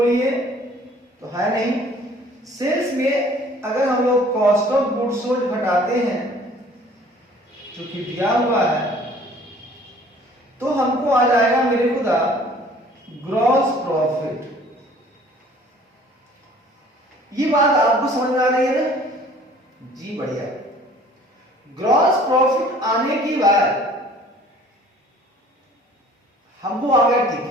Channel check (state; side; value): normal; both; correlation 0.53